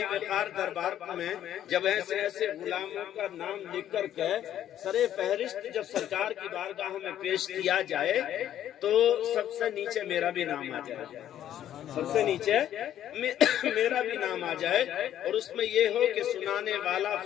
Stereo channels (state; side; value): quieter; right; 11.2 dB